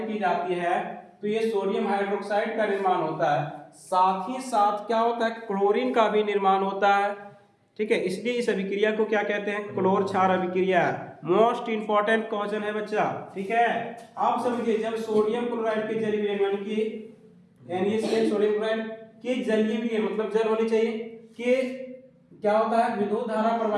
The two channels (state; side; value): identical; both; correlation 1.00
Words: की जाती है तो ये सोडियम हाइड्रोक्साइड का निर्माण होता है, साथ ही साथ क्या होता है? क्लोरीन का भी निर्माण होता है। ठीक है, इसलिए इस अभिक्रिया को क्या कहते हैं? क्लोर क्षार अभिक्रिया। मोस्ट इंपॉर्टेंट क्वेश्चन है बच्चा। ठीक है, आप समझिए जब सोडियम क्लोराइड के जलीय विलयन यानी कि NaCl सोडियम क्लोराइड के जलीय विलयन मतलब जल होनी चाहिए कि क्या होता है? विद्युत धारा